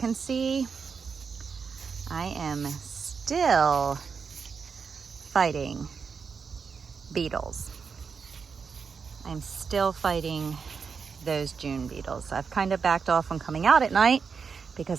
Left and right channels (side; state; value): left; quieter; 5.7 dB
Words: see I am still fighting beetles. I'm still fighting those June beetles. I've kind of backed off on coming out at night